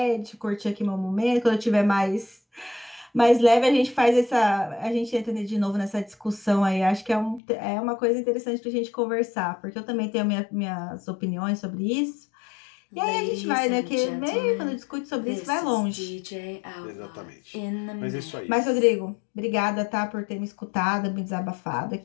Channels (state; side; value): drops out; right; at 7.4 s